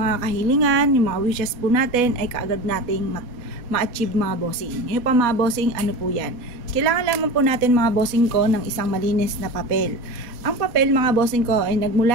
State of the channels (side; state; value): left; late; 4.2 ms